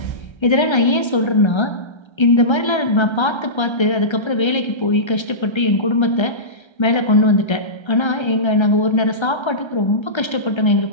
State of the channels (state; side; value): late; right; 1.3 ms